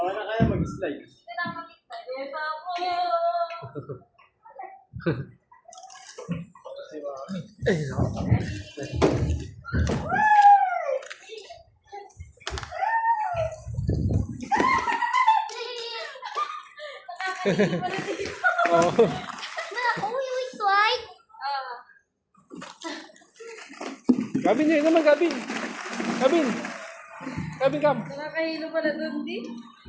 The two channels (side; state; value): both; identical; correlation 1.00